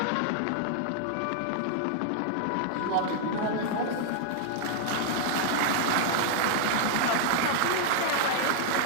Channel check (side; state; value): both; different; correlation 0.00